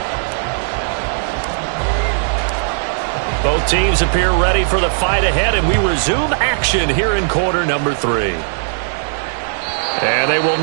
Both teams appear ready for the fight ahead, and we resume action here in quarter number 3. And they will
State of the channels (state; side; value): silent; left; digital silence